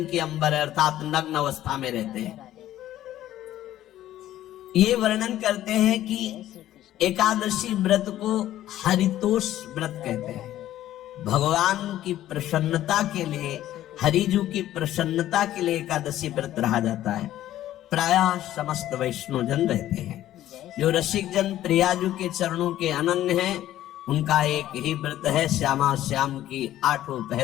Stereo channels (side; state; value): right; quieter; 13.2 dB